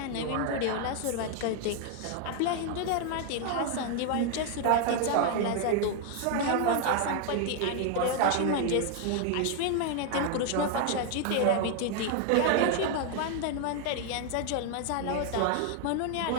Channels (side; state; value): both; different; correlation 0.00